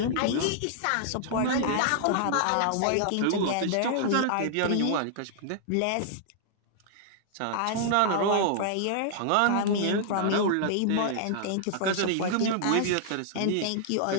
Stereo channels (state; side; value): different; both; correlation -0.01